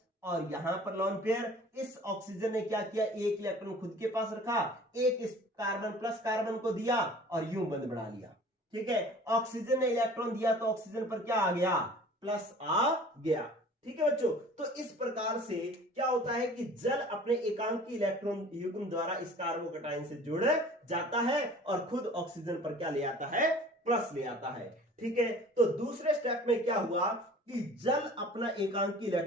और यहां पर लोन पेयर। इस ऑक्सीजन ने क्या किया, एक इलेक्ट्रॉन खुद के पास रखा, एक इस कार्बन प्लस कार्बन को दिया और यूं बंद बढ़ा लिया। ठीक है, ऑक्सीजन ने इलेक्ट्रॉन दिया तो ऑक्सीजन पर क्या आ गया, प्लस आ गया। ठीक है बच्चों, तो इस प्रकार से क्या होता है कि जल अपने एकांकी इलेक्ट्रॉन युग्म द्वारा इस कार्बोकैटायन से जुड़ जाता है और खुद ऑक्सीजन पर क्या ले आता है, प्लस ले आता है। ठीक है, तो दूसरे स्टेप में क्या हुआ कि जल अपना एकांकी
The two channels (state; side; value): normal; both; correlation 0.46